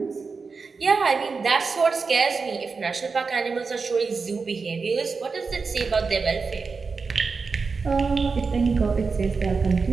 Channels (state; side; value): quieter; left; 4.7 dB